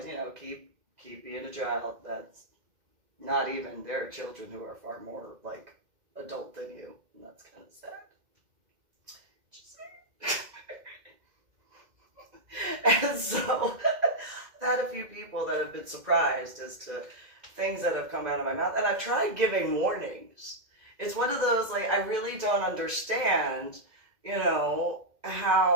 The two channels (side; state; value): left; late; 2.1 ms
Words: you know, keep being a child. That's not even, there are children who are far more, like, adult than you. And that's kind of sad. And so I've had a few people that have been surprised as to things that have come out of my mouth. And I've tried giving warnings. It's one of those, like, I really don't understand, you know,